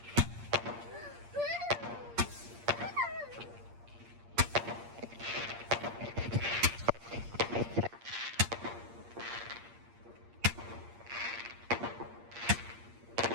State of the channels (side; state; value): left; late; 8.6 ms